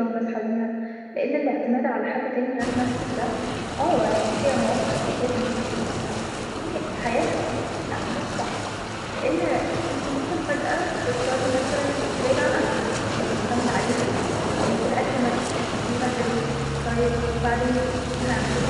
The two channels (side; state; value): both; identical; correlation 1.00